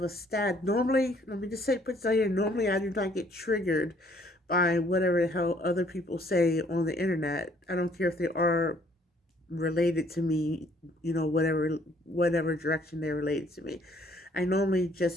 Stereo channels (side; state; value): both; normal; correlation 0.63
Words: a stat. Normally, let me just say, put this out here, normally I do not get triggered by whatever the hell other people say on the internet. I don't care if they are related to me, whatever direction they're related to me. I normally